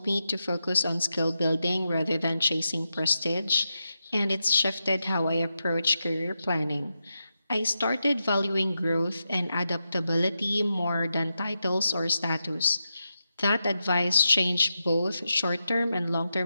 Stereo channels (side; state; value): both; inverted; correlation -0.88